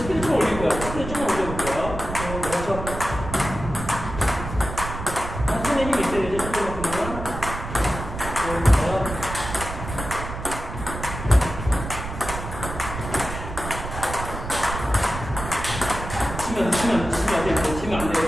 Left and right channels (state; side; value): noise; right; rumble, 8 dB below the sound